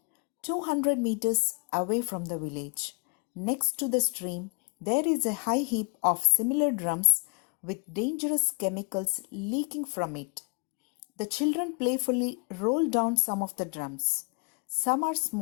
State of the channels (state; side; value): quieter; right; 33.4 dB